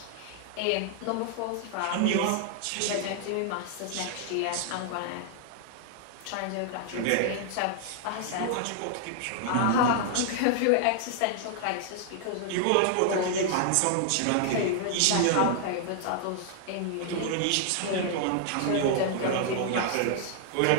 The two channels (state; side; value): different; both; correlation 0.00